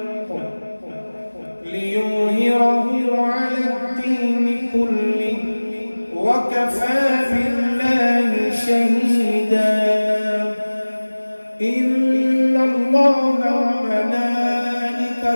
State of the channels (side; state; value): both; inverted; correlation -1.00